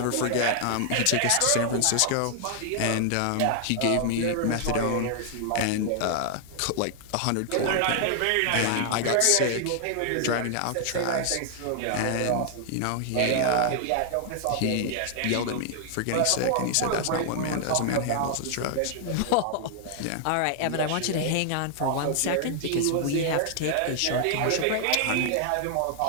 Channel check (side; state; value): both; different; correlation 0.00